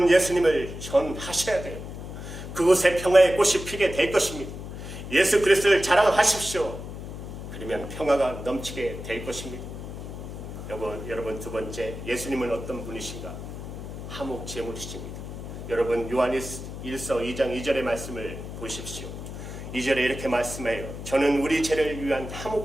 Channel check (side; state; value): left; noise; hum, 9 dB below the sound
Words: 예수님을 전하셔야 돼요. 그곳에 평화의 꽃이 피게 될 것입니다. 예수 그리스도를 자랑하십시오. 그러면 평화가 넘치게 될 것입니다. 여러분, 두 번째, 예수님은 어떤 분이신가? 화목 제물이십니다. 여러분 요한 1서 2장 2절의 말씀을 보십시오. 2절에 이렇게 말씀해요. 저는 우리 죄를 위한